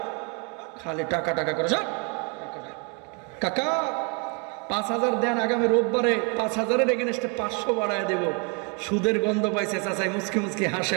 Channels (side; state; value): left; quieter; 33.0 dB